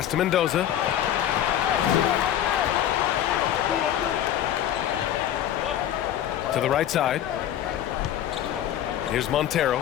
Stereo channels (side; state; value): right; quieter; 11.1 dB